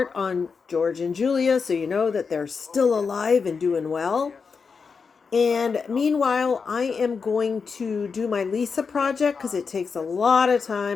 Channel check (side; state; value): right; quieter; 5.3 dB